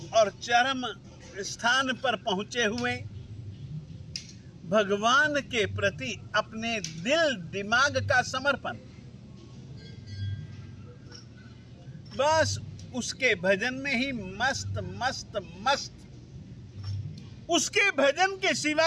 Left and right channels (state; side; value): identical; both; correlation 1.00